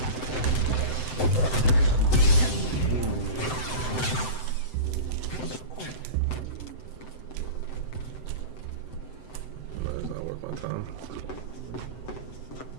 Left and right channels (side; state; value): right; late; 7.8 ms